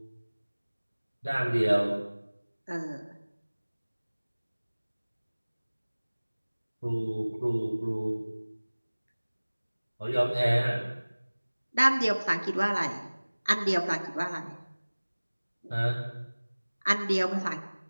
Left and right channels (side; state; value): both; inverted; correlation -1.00